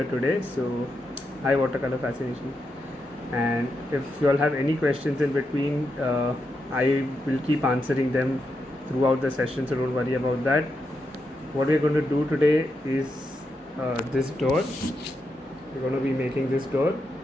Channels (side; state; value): both; normal; correlation 0.84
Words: today. So, hi, watercolor fascination. And if you all have any questions in between, I will keep answering them throughout the session, so don't worry about that. What we're going to do today is this door. We're going to be making this door.